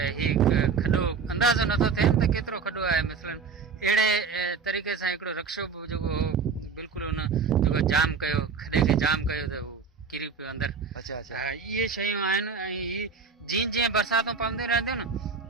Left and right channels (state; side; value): quieter; left; 5.5 dB